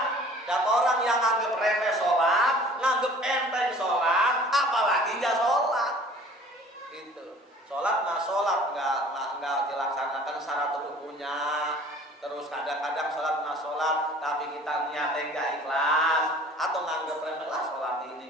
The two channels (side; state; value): both; normal; correlation 0.48